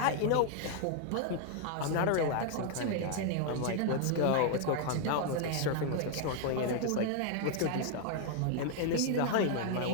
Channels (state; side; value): different; both; correlation 0.00